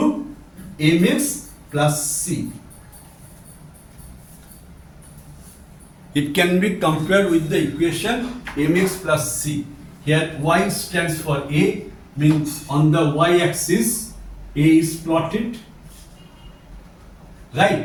mx plus c. It can be compared with the equation mx plus c. Here y stands for a, means on the y-axis a is plotted,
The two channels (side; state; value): both; identical; correlation 1.00